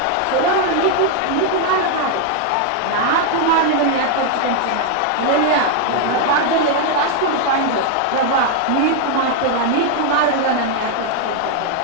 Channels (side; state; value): both; different; correlation 0.00